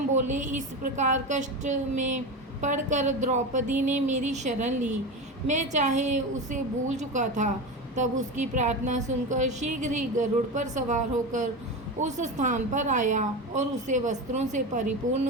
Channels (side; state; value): both; normal; correlation 0.22